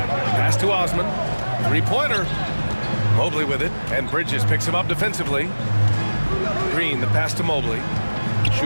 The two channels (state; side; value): inverted; both; correlation -1.00